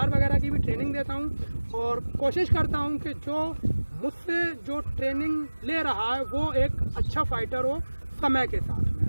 वगैरह की भी ट्रेनिंग देता हूँ और कोशिश करता हूँ कि जो मुझसे जो ट्रेनिंग ले रहा है वो एक अच्छा फाइटर हो समय के साथ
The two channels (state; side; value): inverted; both; correlation -1.00